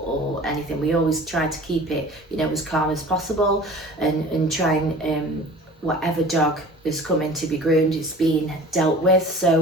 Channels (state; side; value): normal; both; correlation 0.42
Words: anything. We always tried to keep it, you know, as calm as possible, and try and whatever dog is coming to be groomed, it's being dealt with.